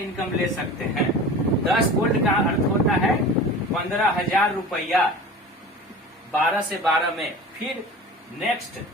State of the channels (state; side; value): normal; both; correlation 0.36